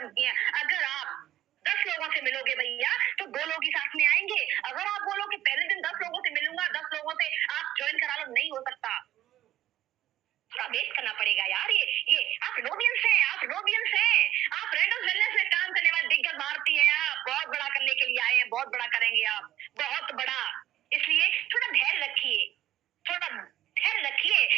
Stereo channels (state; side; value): quieter; left; 12.9 dB